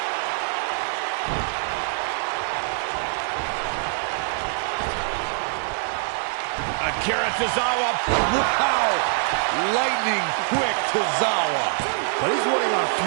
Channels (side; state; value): left; silent; 63 dB below the other